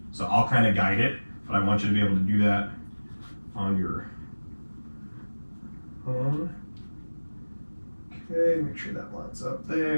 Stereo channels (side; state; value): both; inverted; correlation -1.00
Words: So I'll kind of guide it, but I want you to be able to do that on your own. Okay, make sure that lines up